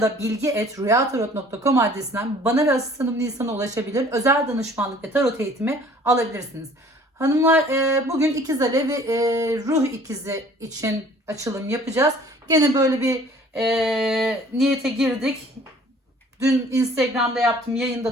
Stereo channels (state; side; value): normal; both; correlation 0.53